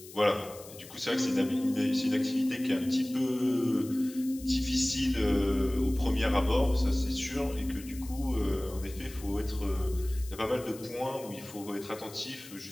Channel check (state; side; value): noise; left; hiss, 17 dB below the sound